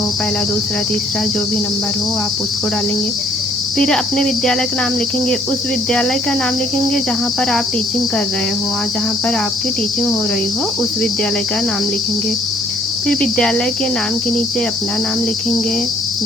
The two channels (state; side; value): normal; both; correlation 0.62